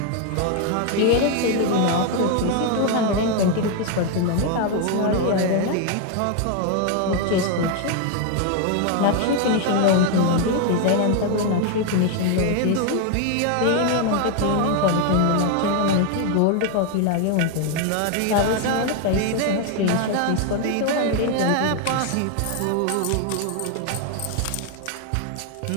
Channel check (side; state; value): both; different; correlation 0.01